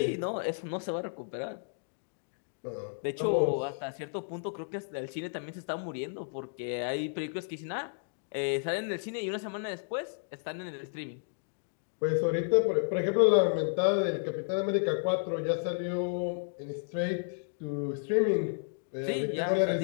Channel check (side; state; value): right; silent; digital silence